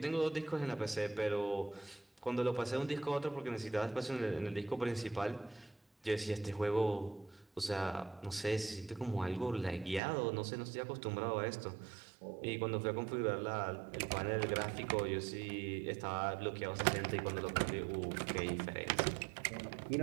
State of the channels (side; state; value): left; drops out; at 10.0 s